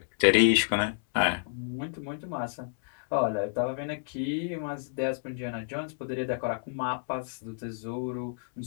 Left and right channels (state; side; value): silent; right; 58 dB below the other